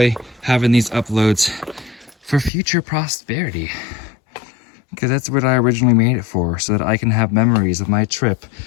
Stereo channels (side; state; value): right; drops out; at 2.5 s